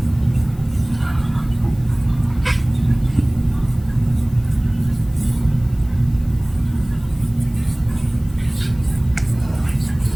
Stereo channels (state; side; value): noise; left; hiss, 27 dB below the sound